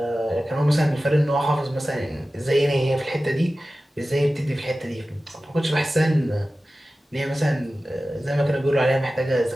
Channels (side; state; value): both; normal; correlation 0.95